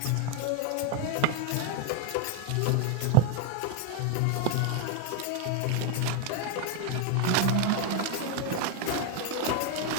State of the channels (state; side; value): different; both; correlation 0.01